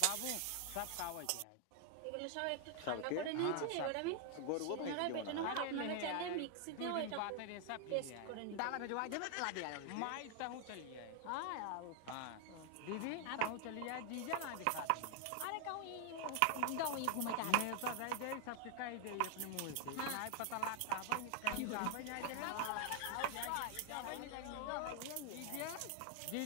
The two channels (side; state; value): both; different; correlation 0.00